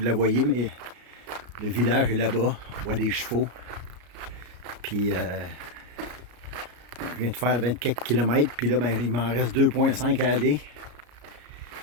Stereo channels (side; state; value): left; late; 33 ms